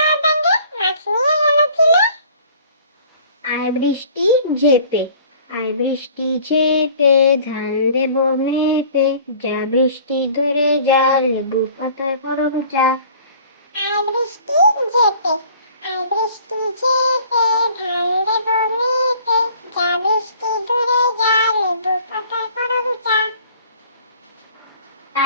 ব্যাঙে, মাছ নিয়ে গেল চিলে। আয় বৃষ্টি ঝেপে, আয় বৃষ্টি ঝেপে, ধান দেব মেপে। যা বৃষ্টি ধরে যা, লেবু পাতায় করব যা। আয় বৃষ্টি ঝেপে, আয় বৃষ্টি ঝেপে, ধান দেব মেপে। যা বৃষ্টি ধরে যা, লেবু পাতায় করব যা।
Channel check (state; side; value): inverted; both; correlation -0.51